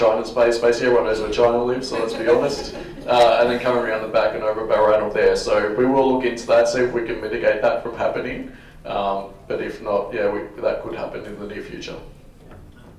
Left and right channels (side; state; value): both; identical; correlation 1.00